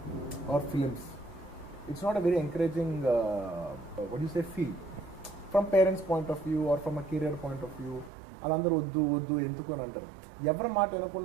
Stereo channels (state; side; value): drops out; left; at 8.1 s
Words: or films, it's not a very encouraging what you say feel from parents point of view or from a career point of view. వాళ్ళందరూ వద్దు ఎందుకు అని అంటారు. ఎవరి మాట